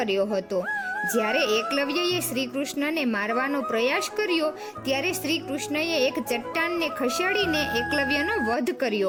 હતો. જ્યારે એકલવ્યએ શ્રી કૃષ્ણને મારવાનો પ્રયાસ કર્યો ત્યારે શ્રી કૃષ્ણએ એક ચટ્ટાનને ખસેડીને એકલવ્યનો વધ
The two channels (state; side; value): identical; both; correlation 1.00